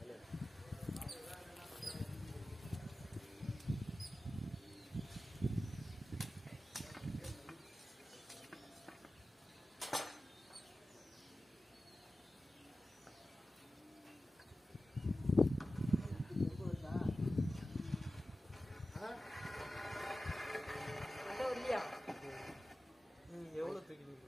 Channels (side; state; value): both; normal; correlation 0.94